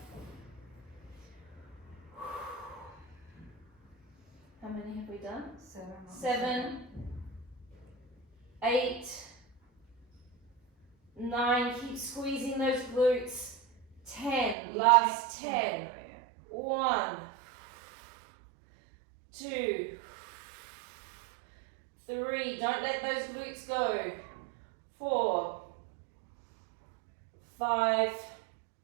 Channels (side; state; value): left; drops out; at 14.6 s